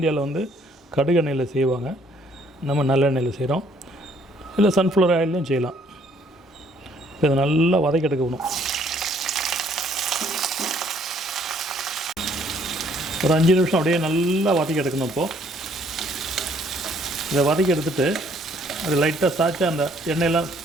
கடுகு எண்ணெயில் செய்வாங்க. நம்ம நல்லெண்ணெயில் செய்கிறோம். இல்லை சன்ஃப்ளவர் ஆயிலையும் செய்யலாம். இப்போ இதை நல்லா வதக்கி எடுக்கணும். ஒரு 5 நிமிஷம் அப்படியே நல்லா வதக்கி எடுக்கணும். இப்போது இதை வதக்கி எடுத்துகிட்டு அது லைட்டாக சாய்ச்சா அந்த எண்ணெயெல்லாம்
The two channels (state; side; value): normal; both; correlation 0.64